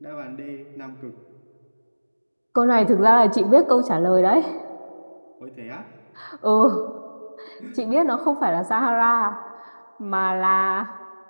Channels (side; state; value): both; inverted; correlation -1.00